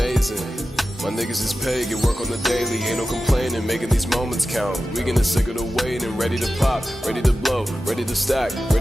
My niggas is paid, get work on the daily. Ain't no complaining, making these moments count. We getting sick of the waiting, ready to pop, ready to blow, ready to stack,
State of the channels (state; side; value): normal; both; correlation 0.93